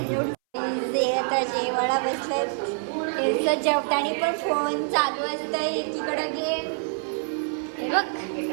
आता जेवायला बसले. त्यांचं जेवताना पण फोन चालू असतं. एकीकडे गेम. हे बघ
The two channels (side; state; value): left; silent; 61 dB below the other